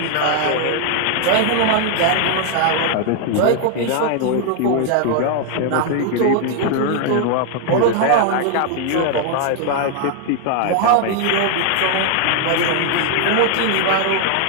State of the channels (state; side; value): different; both; correlation 0.00